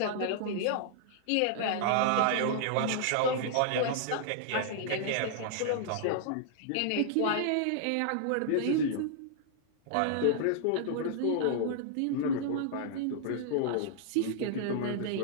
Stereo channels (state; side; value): different; both; correlation -0.01